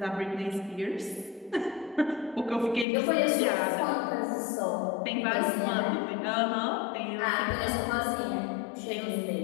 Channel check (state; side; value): drops out; right; at 2.9 s